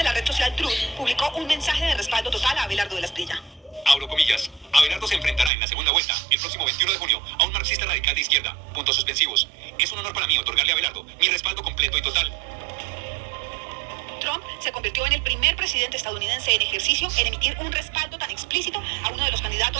la red social Truth, publicó un mensaje de respaldo total a Abelardo de la Espriella. Abro comillas. Abelardo se enfrentará en la segunda vuelta, el próximo 21 de junio, a un marxista radical de izquierda. Puntos suspensivos. Es un honor para mí otorgarle a Abelardo mi respaldo completo y total. Trump se convirtió en el primer presidente estadounidense en ejercicio en emitir un respaldo tan explícito a uno de los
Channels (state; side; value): drops out; left; at 5.5 s